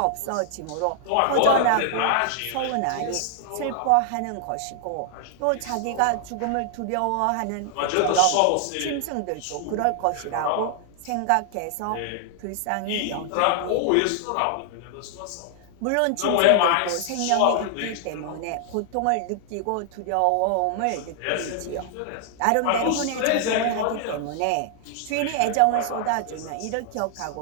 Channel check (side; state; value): both; different; correlation -0.01